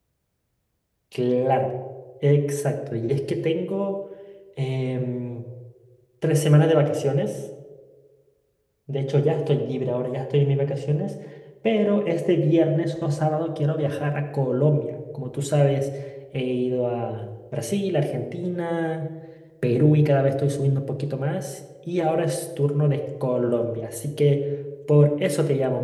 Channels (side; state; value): both; identical; correlation 1.00